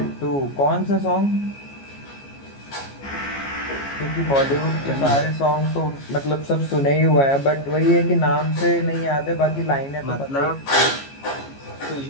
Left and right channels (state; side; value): late; right; 14 ms